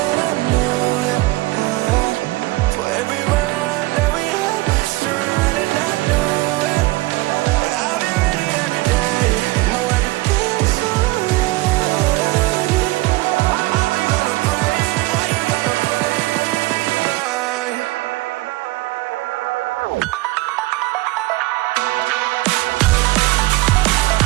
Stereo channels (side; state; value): left; quieter; 20.4 dB